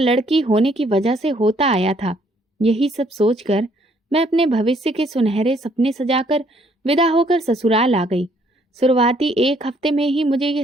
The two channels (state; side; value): normal; both; correlation 0.66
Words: होने की वजह से होता आया था। यही सब सोचकर मैं अपने भविष्य के सुनहरे सपने सजाकर विदा होकर ससुराल आ गई। शुरुआती एक हफ्ते में ही मुझे